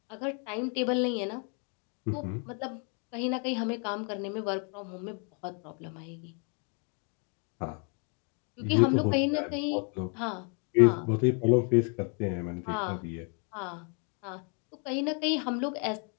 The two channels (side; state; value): right; quieter; 39.1 dB